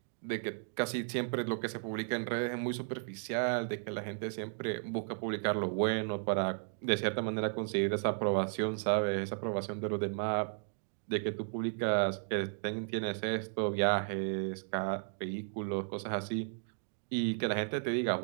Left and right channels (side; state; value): left; silent; digital silence